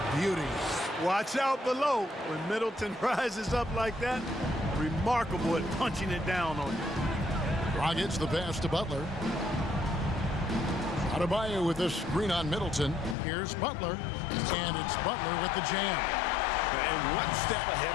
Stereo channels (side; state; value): right; drops out; at 13.2 s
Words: beauty. Watch out below. When Middleton rises up like that, remarkable at punching it down on you. Dragic the pass to Butler. Adebayo with a screen on Middleton. Here's Butler. And it's Butler with the jam. And one step ahead